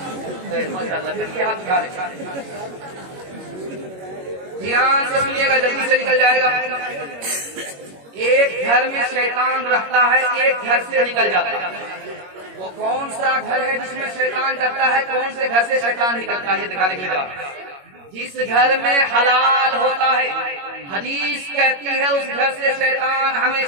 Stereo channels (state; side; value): late; left; 21 ms